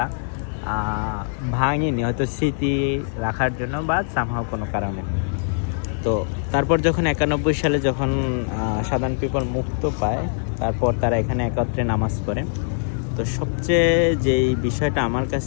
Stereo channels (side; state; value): right; silent; digital silence